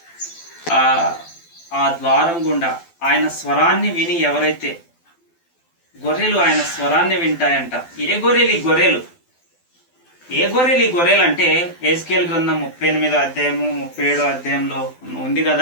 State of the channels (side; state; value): right; late; 12 ms